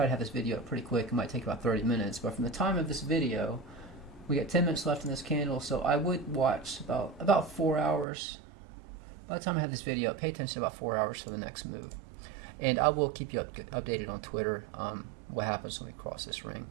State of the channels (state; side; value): drops out; left; at 8.1 s